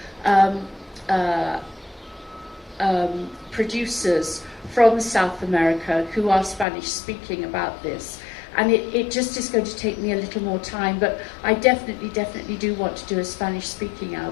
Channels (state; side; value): drops out; right; at 6.7 s